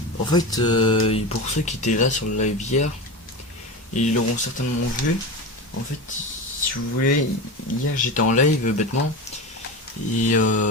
En fait, pour ceux qui étaient là sur le live hier, ils l'auront certainement vu. En fait, si vous voulez, hier j'étais en live bêtement et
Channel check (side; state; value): both; normal; correlation 0.24